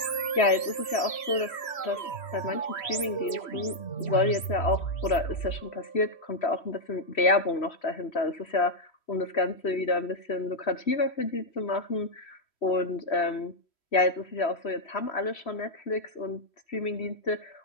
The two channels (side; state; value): right; late; 3.1 ms